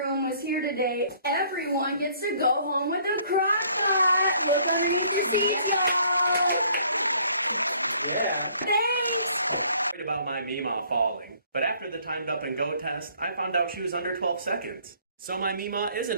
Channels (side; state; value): both; inverted; correlation -0.60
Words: was here today, everyone gets to go home with a crock-pot. Look underneath the seats, though. Yeah. Thanks! Worried about my Meemaw falling, but after the timed up and go test, I found out she was under 12 seconds. So my Meemaw isn't